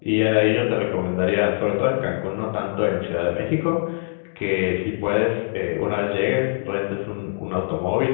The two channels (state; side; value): silent; right; digital silence